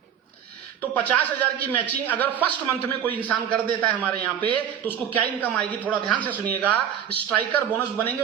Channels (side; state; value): left; quieter; 9.1 dB